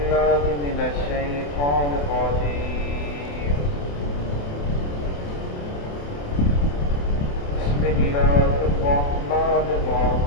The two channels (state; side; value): late; right; 28 ms